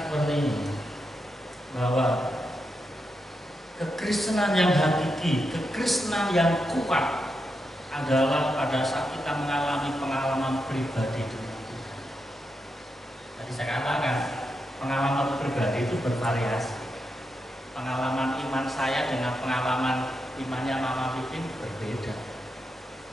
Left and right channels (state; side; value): normal; both; correlation 0.85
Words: seperti ini, bahwa kekristenan yang hakiki, kekristenan yang kuat adalah pada saat kita mengalami pengalaman pribadi dengan Tuhan. Tadi saya katakan, pengalaman pribadi itu bervariasi. Pengalaman iman saya dengan pengalaman imannya Mama Pipin berbeda.